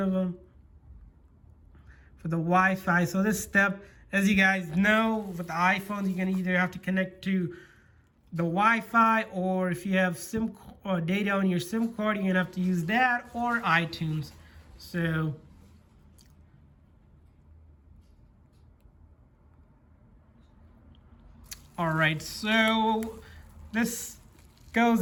of them, for the Wi-Fi. So this step, as you guys know, with the iPhones, you're gonna either have to connect to the Wi-Fi, or if you have SIM or data on your SIM card, you're gonna have to use that or iTunes. So all right, so this goes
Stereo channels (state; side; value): identical; both; correlation 1.00